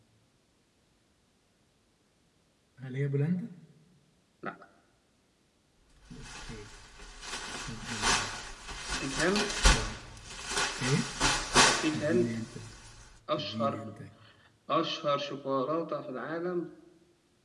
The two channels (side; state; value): both; identical; correlation 1.00